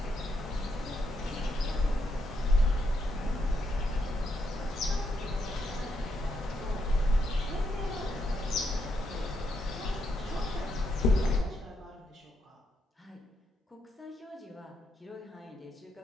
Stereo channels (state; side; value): normal; both; correlation 0.79